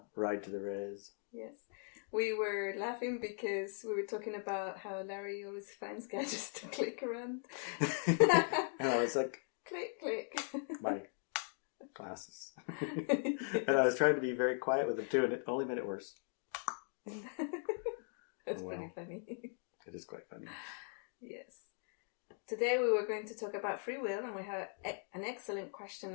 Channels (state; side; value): silent; right; 51 dB below the other